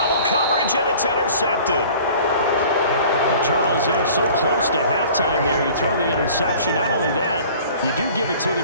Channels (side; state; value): both; inverted; correlation -0.47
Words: coverage, and it's intercepted. Well, Charles, they're so close to halftime there. You throw the interception. Not only that, you do give it to